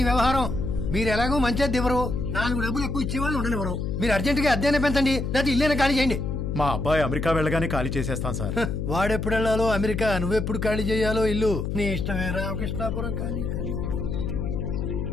వ్యవహారం. మీరు ఎలాగో మంచిది ఇవ్వరు, 4 డబ్బులు ఎక్కువ ఇచ్చేవాళ్ళు ఉండనివ్వరు. మీరు అర్జెంటుగా అద్దెనే పెంచండి, లేకపోతే ఇల్లేనే ఖాళీ చేయండి. మా అబ్బాయి అమెరికా వెళ్ళగానే ఖాళీ చేసేస్తాం సార్. వాడెప్పుడు వెళ్ళాలో అమెరికా, నువ్వెప్పుడు ఖాళీ చేయాలో ఇల్లు నీ ఇష్టమే. రామకృష్ణాపురం ఖాళీ.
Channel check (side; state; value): left; noise; hum, 2 dB below the sound